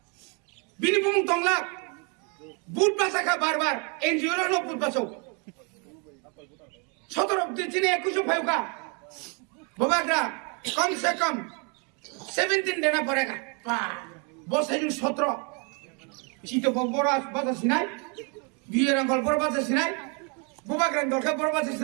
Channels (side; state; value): left; quieter; 35.1 dB